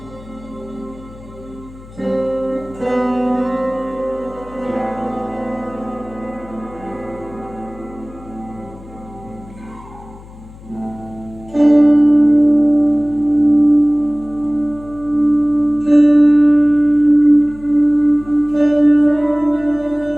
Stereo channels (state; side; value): noise; left; hum, 19 dB below the sound